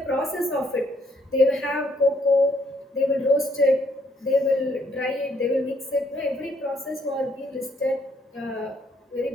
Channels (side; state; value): both; normal; correlation 0.69